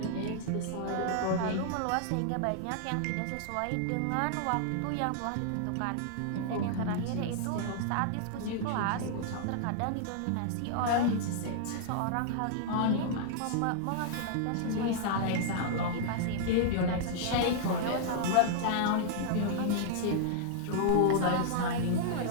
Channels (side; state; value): both; different; correlation -0.01